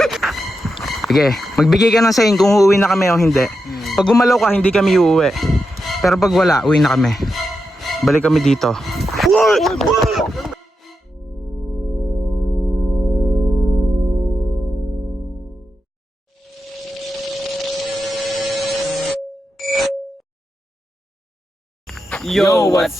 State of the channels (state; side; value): normal; both; correlation 0.87